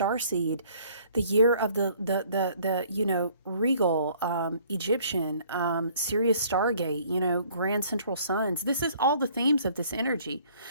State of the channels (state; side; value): inverted; both; correlation -0.58